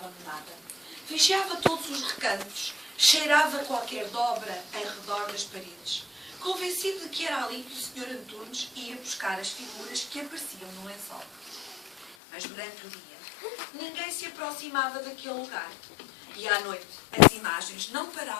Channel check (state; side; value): drops out; right; at 12.2 s